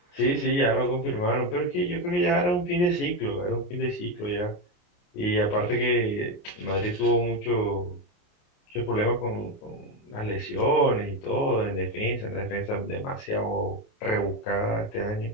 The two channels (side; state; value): right; late; 28 ms